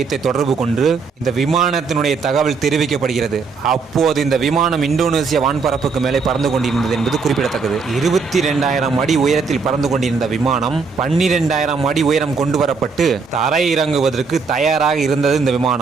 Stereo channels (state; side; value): quieter; left; 4.9 dB